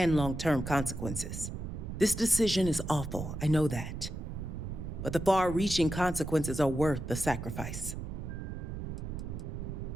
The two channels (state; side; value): noise; right; rumble, 6 dB below the sound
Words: long-term consequences. This decision is awful, I know that. But the far-reaching consequences are worth the sacrifice.